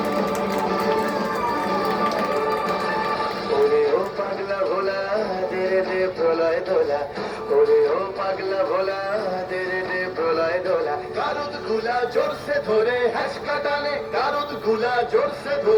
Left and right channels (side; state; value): both; identical; correlation 1.00